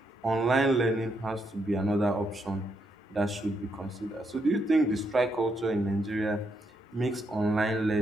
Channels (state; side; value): normal; both; correlation 0.78